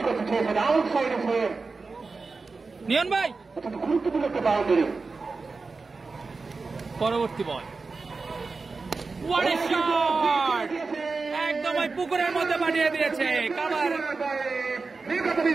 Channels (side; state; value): left; quieter; 4.1 dB